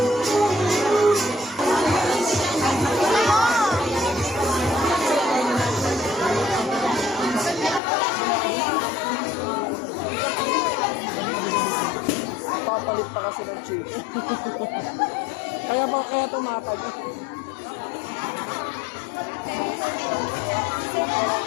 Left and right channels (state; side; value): drops out; right; at 7.8 s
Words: Papalit pa kasi ng chicken. kaya tumatag.